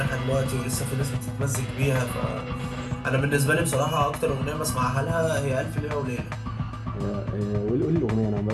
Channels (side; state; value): both; identical; correlation 1.00